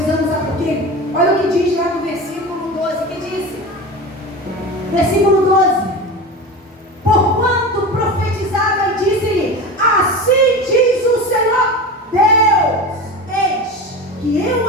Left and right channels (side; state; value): both; normal; correlation 0.28